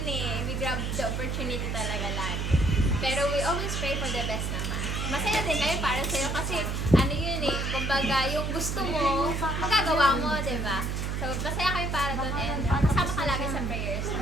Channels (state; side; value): noise; right; hum, 1 dB below the sound